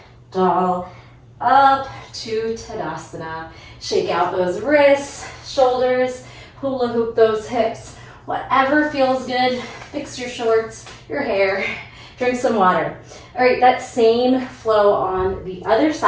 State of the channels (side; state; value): both; identical; correlation 1.00